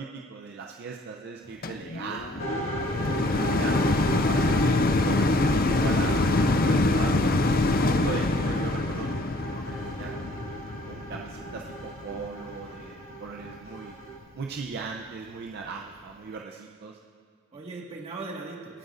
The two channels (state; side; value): normal; both; correlation 0.58